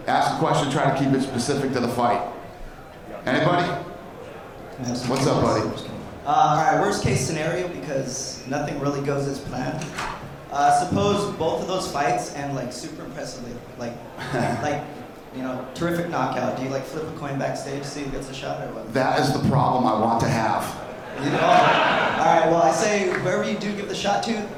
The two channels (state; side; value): identical; both; correlation 1.00